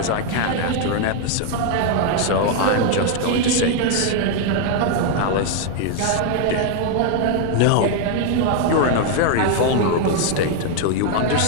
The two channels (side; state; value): both; different; correlation 0.00